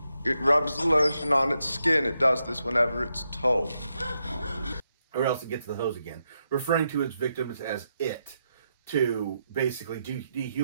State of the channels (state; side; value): inverted; both; correlation -0.83